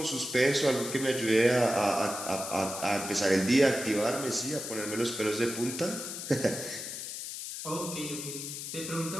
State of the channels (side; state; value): left; noise; hiss, 7 dB below the sound